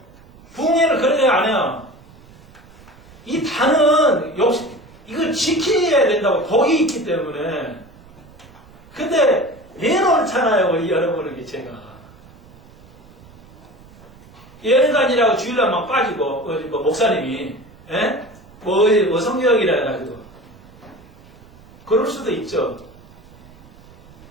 부흥회를 그렇게 안 해요. 이 단은 역시 이걸 지켜야 된다고 복이 있기 때문에. 근데 내놓잖아요. 여러분에게 제가. 예능간이라고 주일날 막 빠지고 뭐 목사님이 뭐 성경이라 해가지고 그럴 수도 있죠.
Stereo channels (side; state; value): right; noise; rumble, 23 dB below the sound